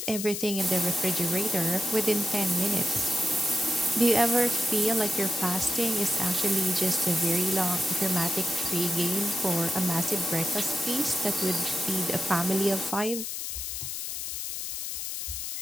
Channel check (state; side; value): noise; left; hiss, 5 dB below the sound